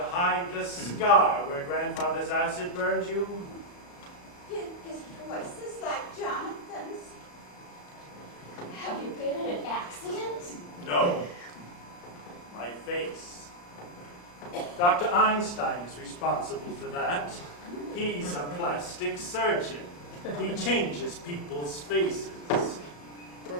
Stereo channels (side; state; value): right; late; 34 ms